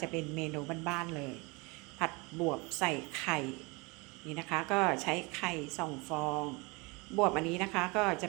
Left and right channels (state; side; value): quieter; left; 27.2 dB